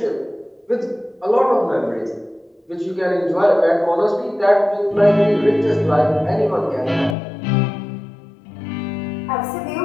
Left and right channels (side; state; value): right; drops out; at 7.2 s